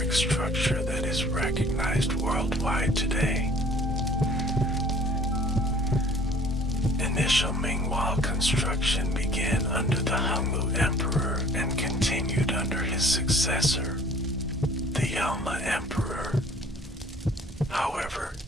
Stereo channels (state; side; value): normal; both; correlation 0.52